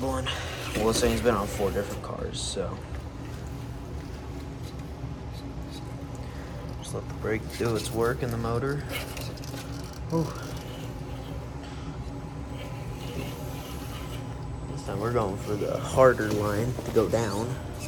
one. Well, this thing's been on 4 different cars, so just let the brake do its work in the motor. Whew. This time we're going for the harder line to go down.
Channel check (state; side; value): identical; both; correlation 1.00